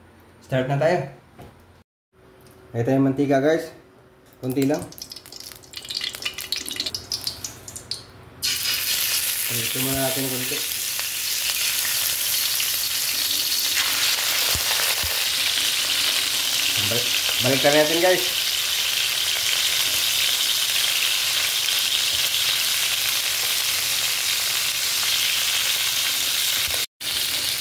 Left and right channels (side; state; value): both; identical; correlation 1.00